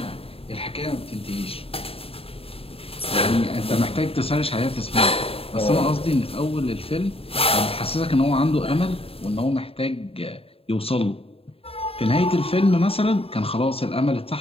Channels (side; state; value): right; late; 0.28 ms